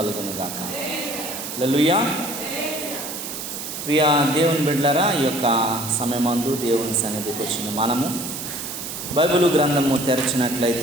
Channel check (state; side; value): noise; right; hiss, 7 dB below the sound